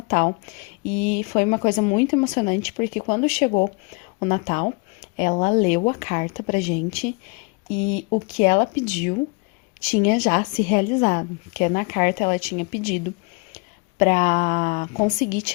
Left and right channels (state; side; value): quieter; right; 28.9 dB